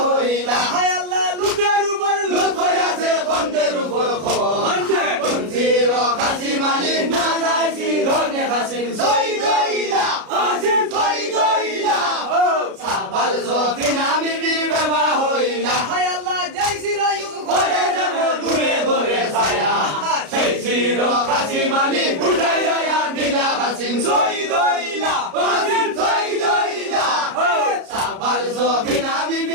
হইলা হায় আল্লাহ লুটের উপর লুট হইয়াছে বন্ধের উপর কুঞ্চির কাসিম আলী না যাইছি ধনে কাসিম শহীদ হইলা কাসিম শহীদ হইলা সাবাল সফিনা বিবির বেবা হইলা হায় আল্লাহ জয় রায়ু ঘরে যাব দূরে দূরে ছায়া সেই চির কাসিম আলী উঠাইয়া দিলা কাসিম শহীদ হইলা কাসিম শহীদ হইলা সাবাল সফিনা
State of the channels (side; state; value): left; late; 33 ms